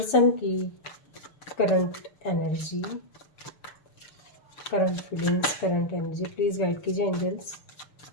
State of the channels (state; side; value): late; right; 6.7 ms